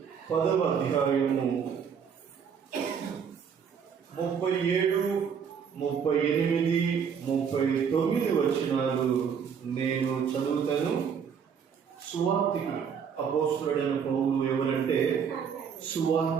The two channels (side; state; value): left; quieter; 7.1 dB